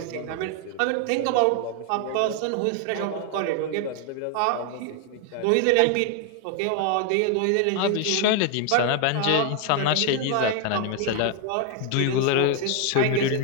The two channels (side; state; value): both; different; correlation 0.01